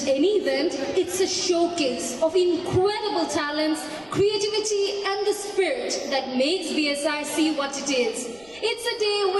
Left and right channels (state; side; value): noise; right; rumble, 28 dB below the sound